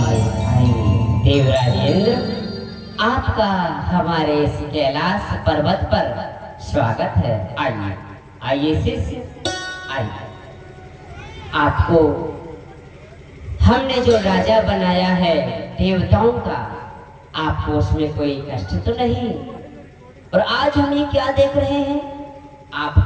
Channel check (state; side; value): identical; both; correlation 1.00